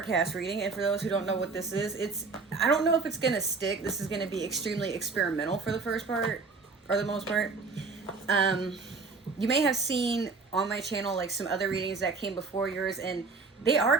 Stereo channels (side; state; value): left; quieter; 4.4 dB